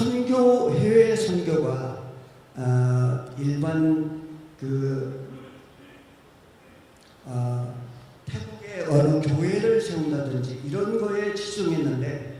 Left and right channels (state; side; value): identical; both; correlation 1.00